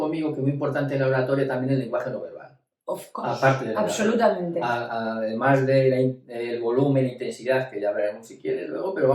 que es muy importante en la oratoria también el lenguaje no verbal. Of course, Aparte de absolutamente. además del volumen e intensidad, que ya hablaremos si quieres luego, pero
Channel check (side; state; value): both; identical; correlation 1.00